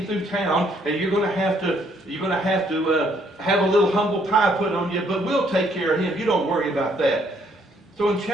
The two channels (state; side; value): normal; both; correlation 0.67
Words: through town, and you're going to have to have a little humble pie put on you, but we'll take care of him. You don't worry about that. So in